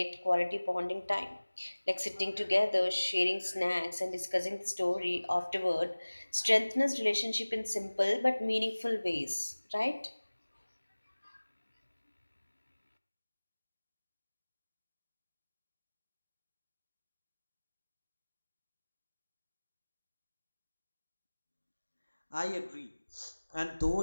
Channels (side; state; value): both; inverted; correlation -1.00